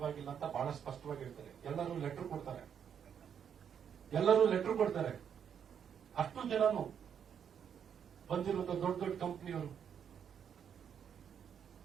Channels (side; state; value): left; quieter; 8.1 dB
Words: ಅಂತ ಬಹಳ ಸ್ಪಷ್ಟವಾಗಿ ಹೇಳ್ತಾರೆ. ಎಲ್ಲರೂ ಲೆಟರ್ ಕೊಡ್ತಾರೆ. ಅಷ್ಟು ಜನನು ಬಂದಿರುವಂತ ದೊಡ್ಡ ದೊಡ್ಡ ಕಂಪನಿಯವರು.